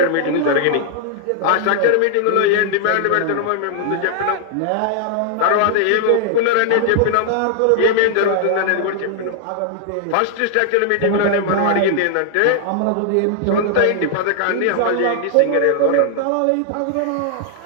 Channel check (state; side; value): different; both; correlation 0.00